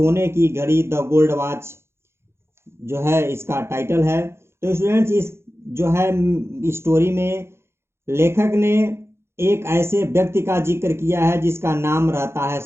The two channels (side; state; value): left; late; 0.12 ms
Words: की घड़ी द गोल्ड वॉच जो है इसका टाइटल है। तो स्टूडेंट्स, इस जो है स्टोरी में लेखक ने एक ऐसे व्यक्ति का जिक्र किया है जिसका नाम रहता है